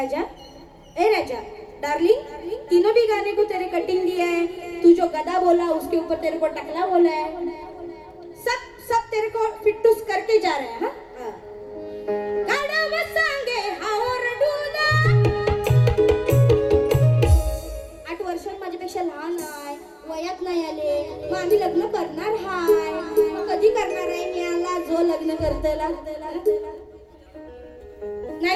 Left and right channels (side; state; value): both; identical; correlation 1.00